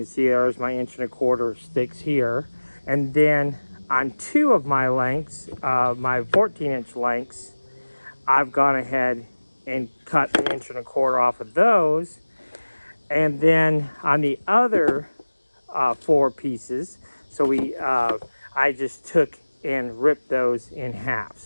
see there's my 1.25 inch sticks here, and then on 2 of my lengths, my 14-inch lengths, I've gone ahead and cut 1.25 inches off of those, and then on the other 4 pieces, so I just took and ripped those in half.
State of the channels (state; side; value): inverted; both; correlation -1.00